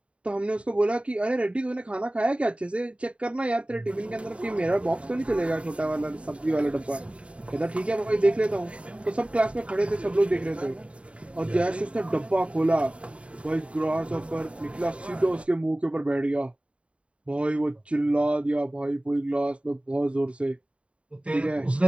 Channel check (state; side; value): late; left; 0.061 ms